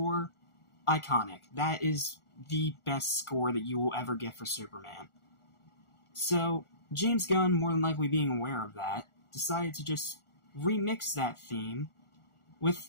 iconic. That is the best score that you will ever get for Superman. So, James Gunn, more than likely being aware of that, decided to just remix that theme with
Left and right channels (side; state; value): right; late; 1.4 ms